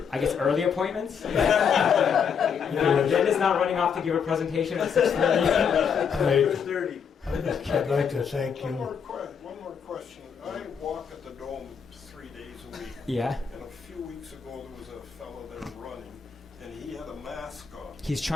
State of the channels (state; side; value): quieter; right; 6.9 dB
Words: I guess early appointments. Jen is not running off to give a presentation at 6:30. 6:30. I'd like to thank One you. more question. I walk at the Dome 3 days a week. Yeah. And a few weeks ago, there was a fellow there running, and he had a mask on. He's